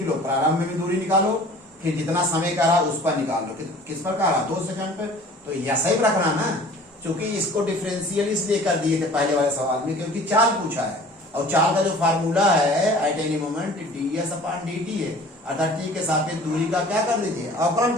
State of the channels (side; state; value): both; normal; correlation 0.47